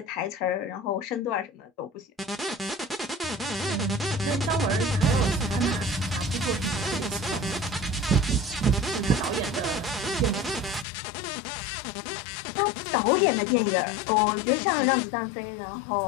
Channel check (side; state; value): right; drops out; at 10.9 s